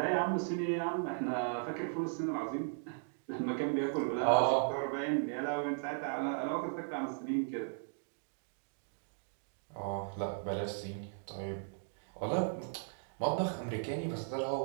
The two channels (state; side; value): silent; left; digital silence